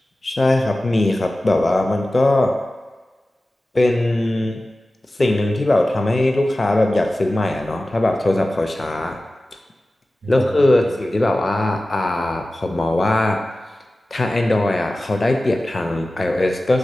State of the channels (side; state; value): both; normal; correlation 0.96